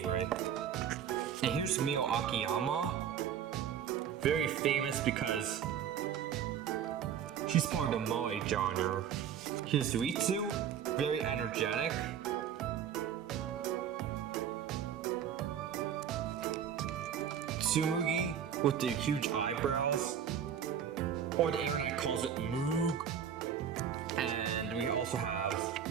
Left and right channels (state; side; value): quieter; left; 8.6 dB